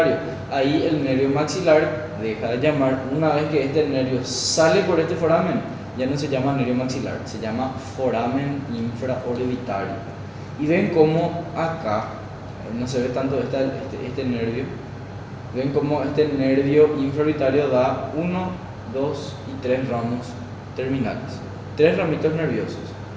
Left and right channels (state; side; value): identical; both; correlation 1.00